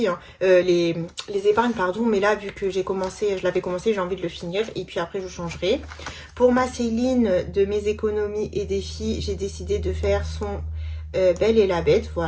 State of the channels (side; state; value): both; identical; correlation 1.00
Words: hein. Les épargnes, pardon. Mais là, vu que j'ai commencé, je l'avais commencé, j'ai envie de le finir. Et puis après, je changerai. Pour ma Céline, de mes économies et défis, j'ai décidé de faire son Belle et la Bête.